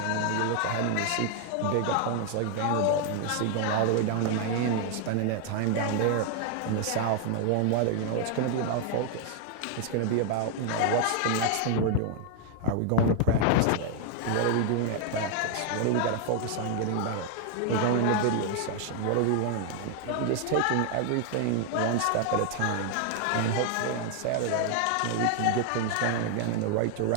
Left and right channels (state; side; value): different; both; correlation 0.00